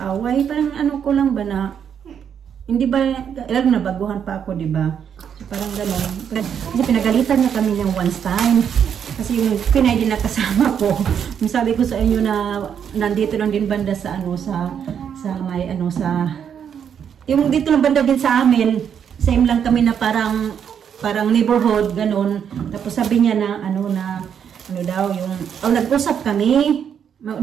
Parang ko lang ba na, hindi ba, lalo na baguhan pa ako, diba? So, Parang gano'n. Kasi pinagalitan niya kami ng once time. Kasi yung Pinay din na kasama ko. Yung sabi ko sa inyo na nandito lang din banda sa ano sa may ano sa yung dito lang banda din sa amin. Same lang kami na parang neighborhood gano'n. Tapos sabi niya na ano daw yung nag-usap kami.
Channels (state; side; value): quieter; left; 8.1 dB